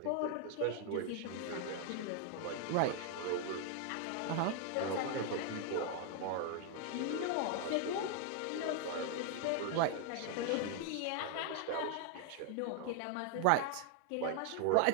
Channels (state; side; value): different; both; correlation 0.00